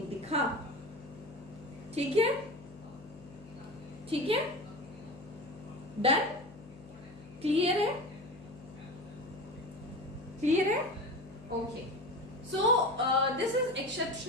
दिखा। ठीक है, ठीक है, डन, क्लियर है, क्लियर है, okay. So this is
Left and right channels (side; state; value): left; noise; hum, 19 dB below the sound